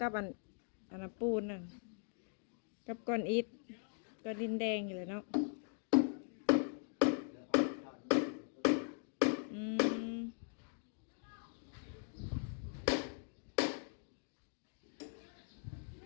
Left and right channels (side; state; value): right; silent; 51 dB below the other